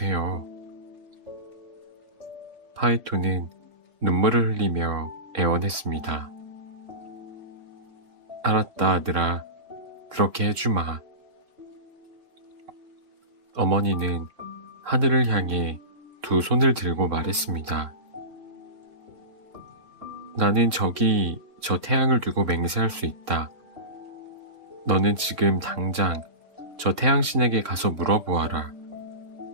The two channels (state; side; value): late; left; 3.6 ms